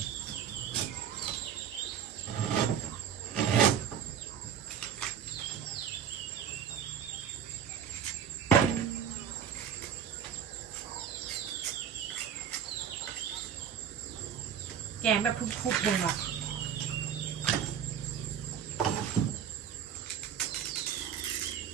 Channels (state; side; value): quieter; left; 8.3 dB